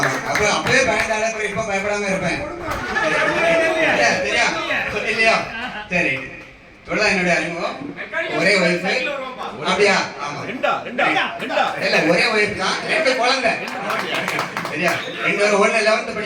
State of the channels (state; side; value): identical; both; correlation 1.00